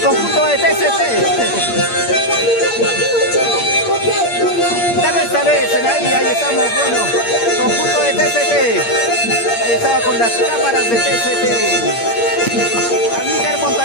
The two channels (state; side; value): late; right; 8.6 ms